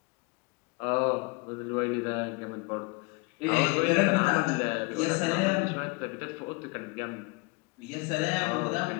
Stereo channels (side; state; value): right; quieter; 27.3 dB